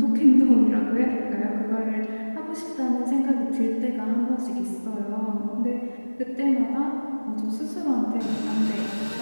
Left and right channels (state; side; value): inverted; both; correlation -1.00